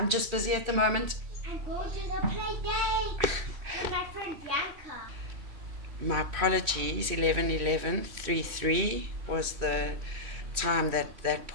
at the moment. I'm going to the play day with my friend Bianca. My apologies, 11:11:33 was the time that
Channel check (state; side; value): late; left; 3.1 ms